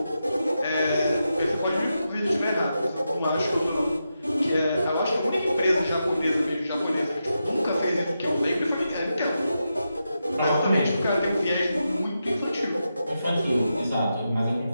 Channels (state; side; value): inverted; both; correlation -0.87